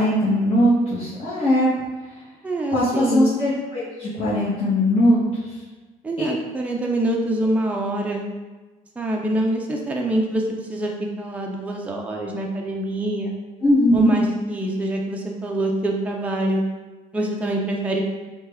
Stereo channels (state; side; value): normal; both; correlation 0.69